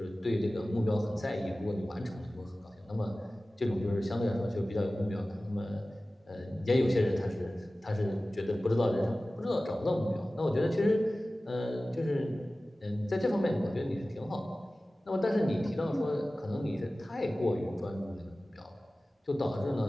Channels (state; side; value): normal; both; correlation 0.97